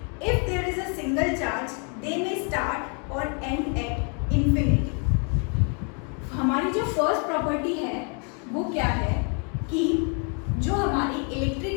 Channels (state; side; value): quieter; right; 38.4 dB